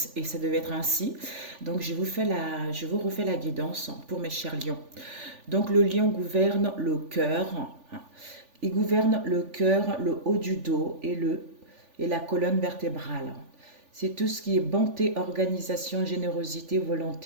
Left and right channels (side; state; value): left; late; 3.5 ms